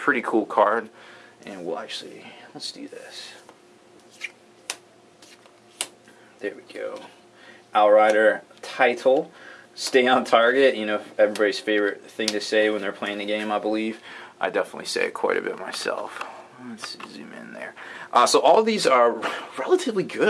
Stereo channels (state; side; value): identical; both; correlation 1.00